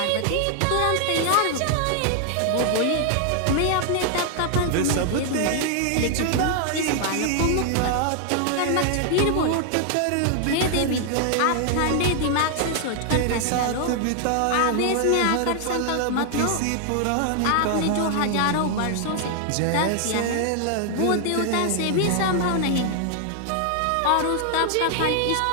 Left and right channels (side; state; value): both; different; correlation 0.00